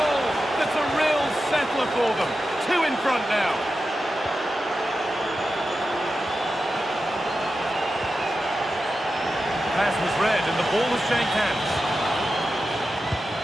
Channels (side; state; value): both; normal; correlation 0.91